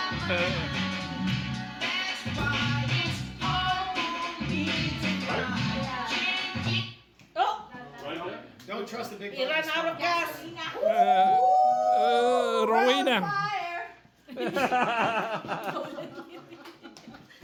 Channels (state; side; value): identical; both; correlation 1.00